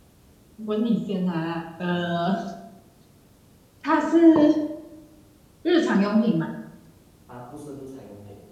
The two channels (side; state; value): both; identical; correlation 1.00